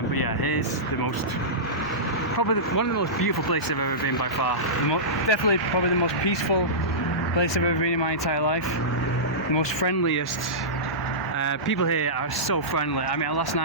But yeah, here's probably one of the most beautiful places I've ever been by far. Definitely probably the most peaceful place I've ever been in my entire life. The most friendliest. People here are so friendly. I mean, last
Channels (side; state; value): both; normal; correlation -0.17